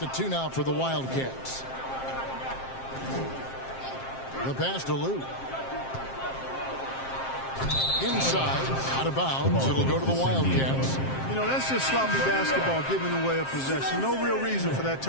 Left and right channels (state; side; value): late; right; 7.6 ms